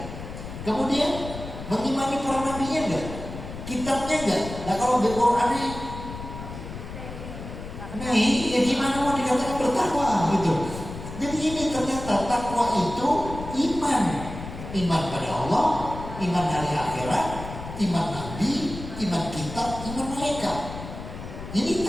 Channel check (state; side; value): noise; left; rumble, 10 dB below the sound